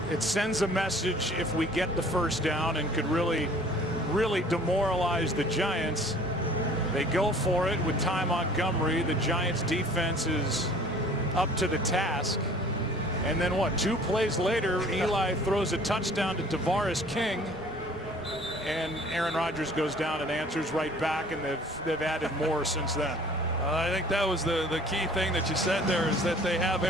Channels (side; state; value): both; normal; correlation 0.51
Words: It sends a message if we get the 1st down and could really demoralize the Giants. They go for it with Ty Montgomery. The Giants defense is up to the task. And then what, 2 plays later, Eli throws a touchdown to Tavares King. And Aaron Rodgers goes down and answers right back, and they've added more since then. I think that was the key thing that you said there, is that they have